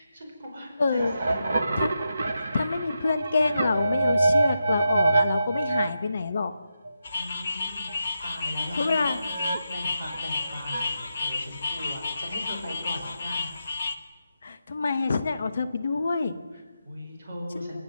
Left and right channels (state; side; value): inverted; both; correlation -0.87